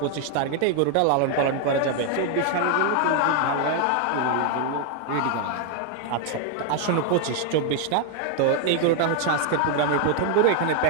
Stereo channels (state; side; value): different; both; correlation 0.00